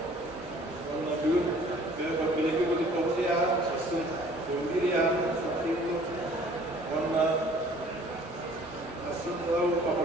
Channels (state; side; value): normal; both; correlation 0.54